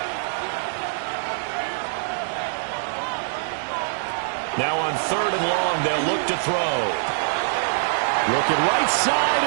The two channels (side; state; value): left; silent; digital silence